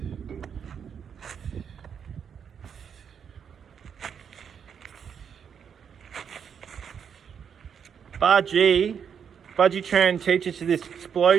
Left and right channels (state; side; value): quieter; left; 7.5 dB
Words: Budgie Tran teaches you this